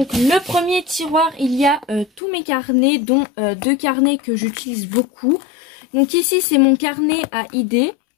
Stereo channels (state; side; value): drops out; right; at 2.2 s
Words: le premier tiroir, il y a tous mes carnets, dont deux carnets que j'utilise beaucoup. Donc ici, c'est mon carnet à idées.